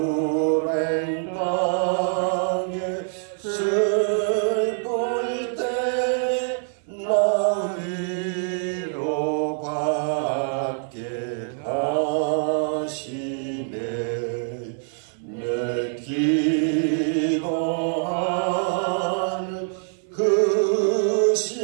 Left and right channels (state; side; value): silent; left; 57 dB below the other